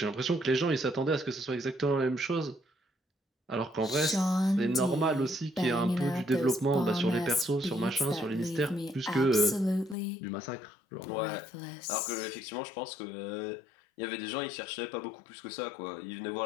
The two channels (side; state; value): right; drops out; at 10.0 s